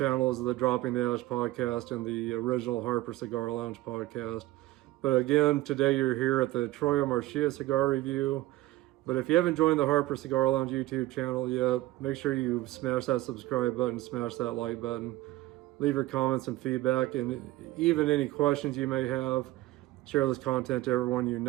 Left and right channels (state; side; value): quieter; left; 17.3 dB